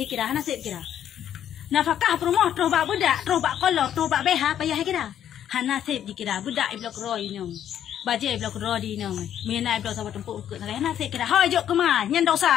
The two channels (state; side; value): quieter; right; 10.2 dB